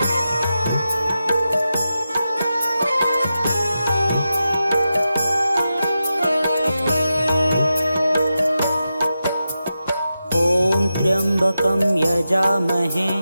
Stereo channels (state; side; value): inverted; both; correlation -0.90